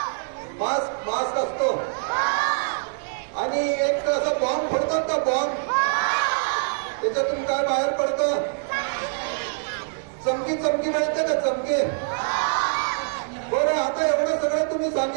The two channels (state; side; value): silent; left; digital silence